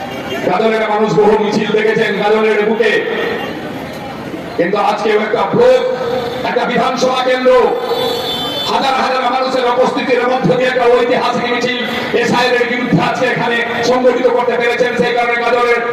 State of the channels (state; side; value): identical; both; correlation 1.00